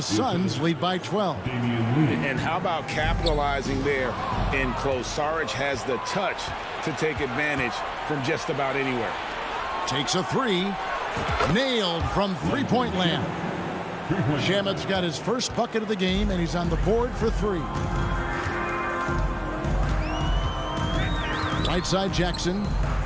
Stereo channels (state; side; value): identical; both; correlation 1.00